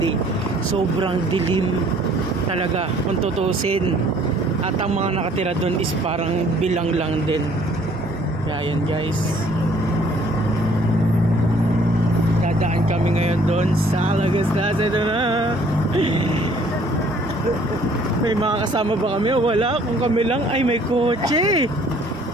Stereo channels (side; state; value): both; normal; correlation 0.59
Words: sobrang dilim talaga kung tutusin. At ang mga nakatira doon is parang bilang lang din. Kaya yun guys, dadaan kami ngayon doon sa Lagaslas. Ito na. May mga kasama ba kami o wala? Kung kami lang, ay may kotse.